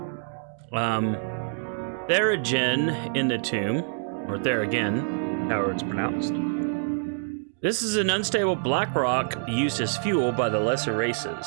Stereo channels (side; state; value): left; silent; digital silence